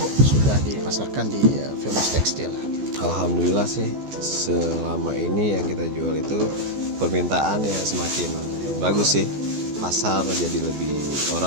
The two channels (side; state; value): left; late; 14 ms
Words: sudah dipasarkan di Famous Tekstil? Alhamdulillah sih, selama ini yang kita jual itu permintaan ya semakin bagus sih. Pasar jadi